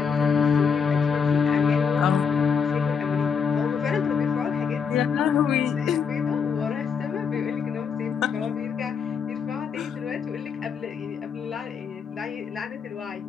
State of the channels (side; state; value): right; quieter; 6.4 dB